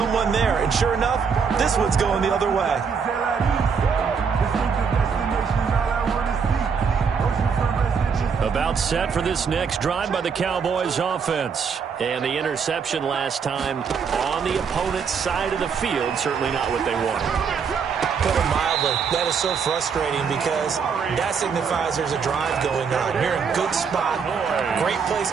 there. And sure enough, this one's going the other way. About set for this next drive by the Cowboys offense. And the interception last time on the opponent's side of the field, certainly not what they wanted. Put it mildly, that is so frustrating because that signifies there's a drive going on. You're in a good spot, great place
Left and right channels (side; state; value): left; quieter; 6.1 dB